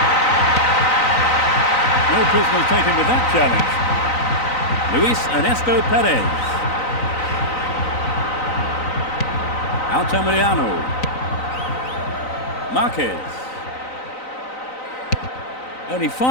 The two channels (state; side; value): late; right; 3.9 ms